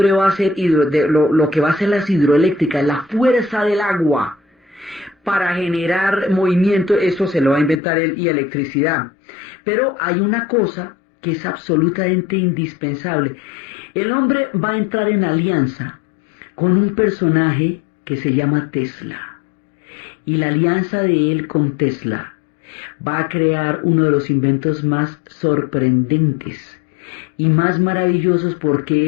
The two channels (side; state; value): right; drops out; at 7.8 s